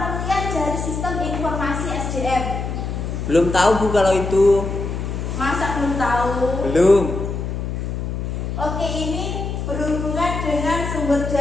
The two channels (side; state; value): left; noise; hum, 4 dB below the sound